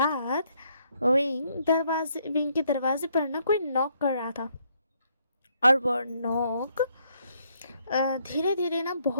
विंग के दरवाजे पर ना कोई नॉक कर रहा था और वो नॉक धीरे धीरे ना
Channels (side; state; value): both; inverted; correlation -0.71